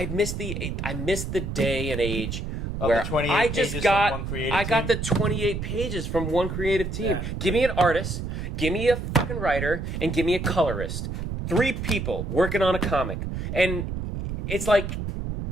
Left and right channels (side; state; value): right; noise; rumble, 4 dB below the sound